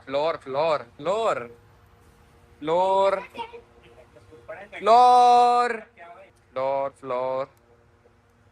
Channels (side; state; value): both; identical; correlation 1.00